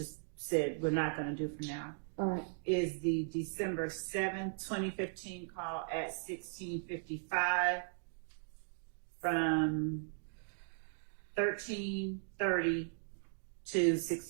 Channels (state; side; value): silent; left; digital silence